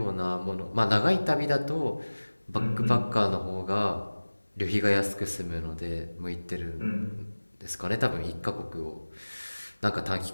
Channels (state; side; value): inverted; both; correlation -1.00